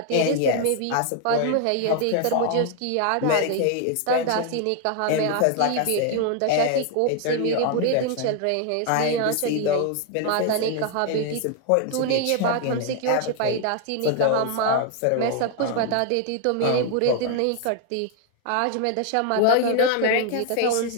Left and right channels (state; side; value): different; both; correlation 0.00